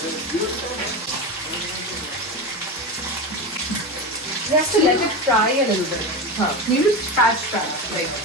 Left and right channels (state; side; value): normal; both; correlation 0.21